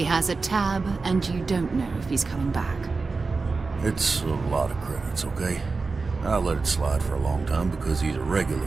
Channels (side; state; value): left; quieter; 4.1 dB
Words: has a tab, and you don't know if he's coming back. it's a lot of credits, okay? I let it slide for a long time because he's a